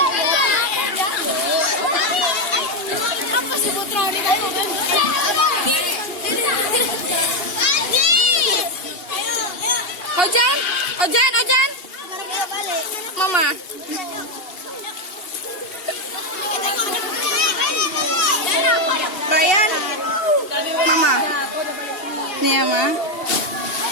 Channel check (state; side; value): late; right; 2.8 ms